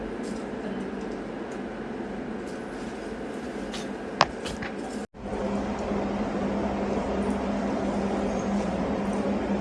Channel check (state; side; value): identical; both; correlation 1.00